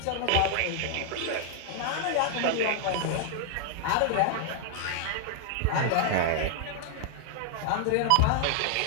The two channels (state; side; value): different; both; correlation -0.01